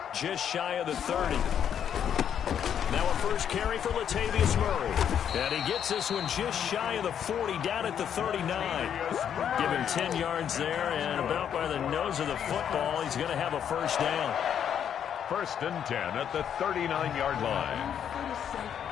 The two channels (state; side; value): quieter; right; 8.8 dB